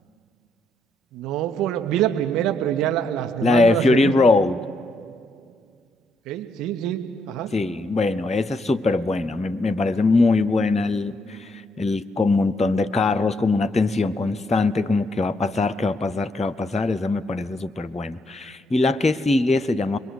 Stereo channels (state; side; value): normal; both; correlation 0.76